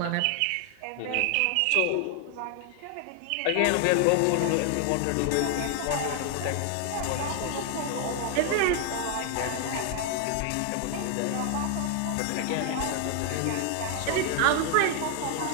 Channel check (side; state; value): both; different; correlation 0.00